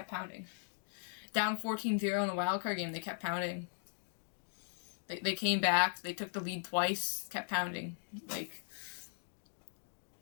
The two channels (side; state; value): right; silent; digital silence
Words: pounding. Down 14-0 in the wildcard game, they kept pounding. They came back, they took the lead twice, kept pounding. Like,